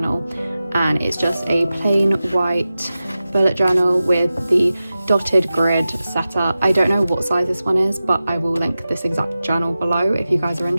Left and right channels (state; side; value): inverted; both; correlation -0.94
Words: And it's just a plain white bullet journal with the dotted grid setup. I don't know what size this one is, but I will link this exact journal below if you guys are